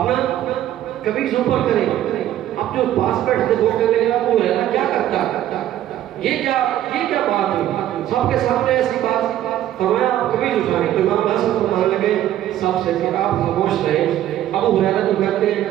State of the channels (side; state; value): left; quieter; 12.4 dB